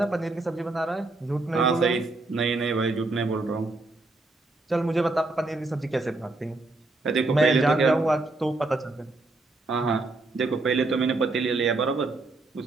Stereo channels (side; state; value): left; quieter; 3.2 dB